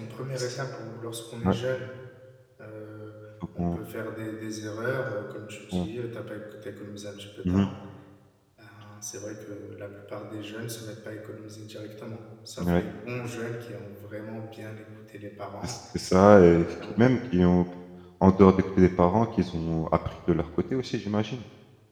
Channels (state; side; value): identical; both; correlation 1.00